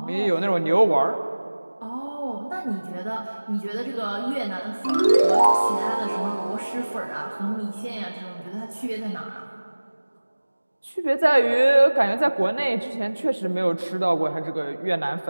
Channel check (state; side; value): inverted; both; correlation -1.00